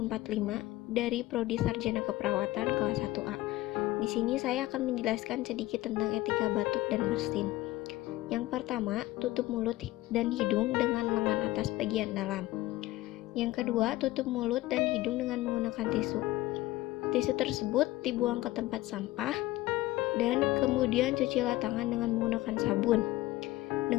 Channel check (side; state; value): right; quieter; 17.5 dB